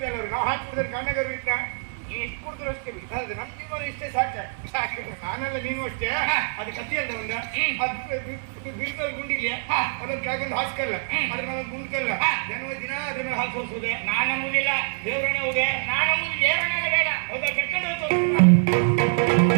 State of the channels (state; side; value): silent; left; 62 dB below the other